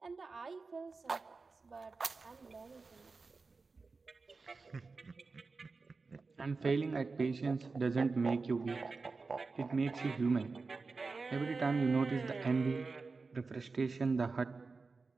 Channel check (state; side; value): quieter; left; 4.2 dB